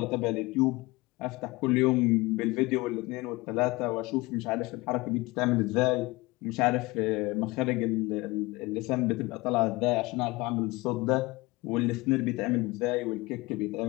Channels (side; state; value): right; quieter; 22.6 dB